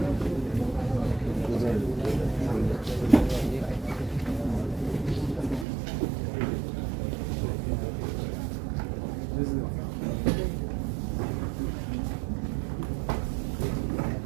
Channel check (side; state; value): left; drops out; at 5.7 s